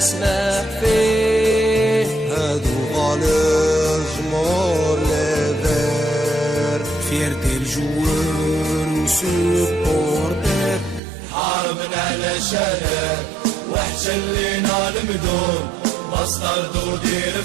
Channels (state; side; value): drops out; left; at 11.0 s